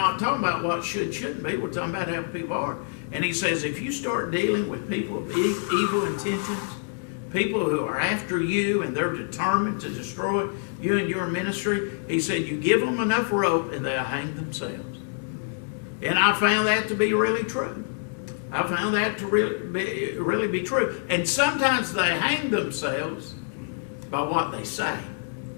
talking about what shouldn't be. We're talking about how people are. And he says if you start dealing with people of evil intentions, people who are after you and they're determined to destroy you and your ministry, he said you give them enough rope and they'll hang themselves. And I found that to be really true. I found that to really be true. And sometimes they hang themselves by what they say.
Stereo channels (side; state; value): right; silent; digital silence